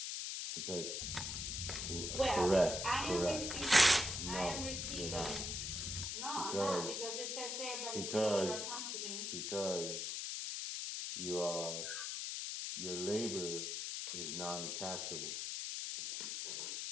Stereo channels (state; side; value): noise; left; hiss, 3 dB below the sound